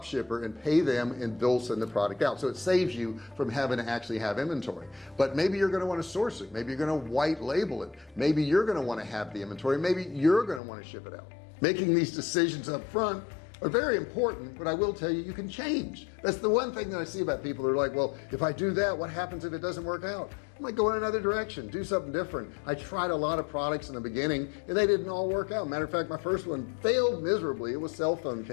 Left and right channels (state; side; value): drops out; right; at 10.6 s